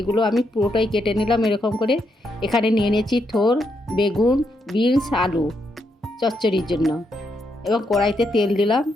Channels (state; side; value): normal; both; correlation 0.79